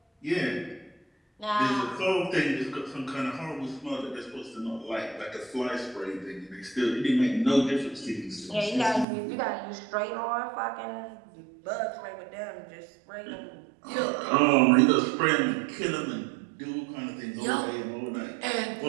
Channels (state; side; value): drops out; left; at 9.1 s